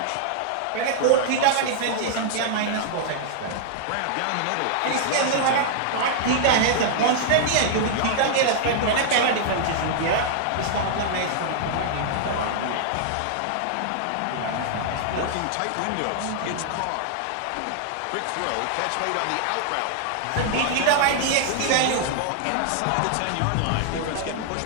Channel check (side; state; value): both; different; correlation -0.01